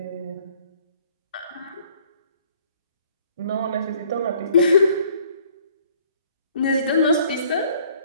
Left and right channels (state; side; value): inverted; both; correlation -0.59